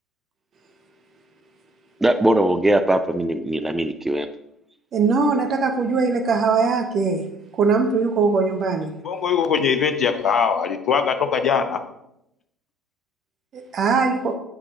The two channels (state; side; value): normal; both; correlation 0.60